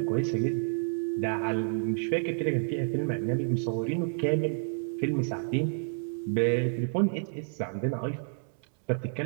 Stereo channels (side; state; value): left; silent; digital silence